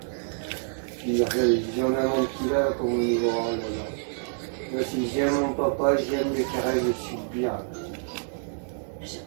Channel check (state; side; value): silent; left; digital silence